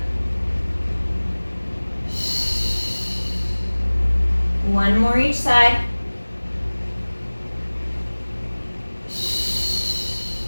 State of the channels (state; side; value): inverted; both; correlation -1.00